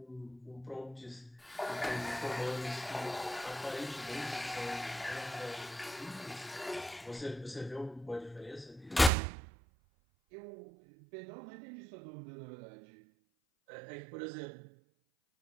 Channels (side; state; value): left; drops out; at 9.1 s